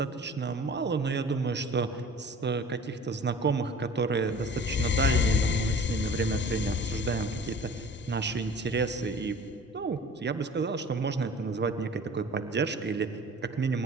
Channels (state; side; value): normal; both; correlation 0.44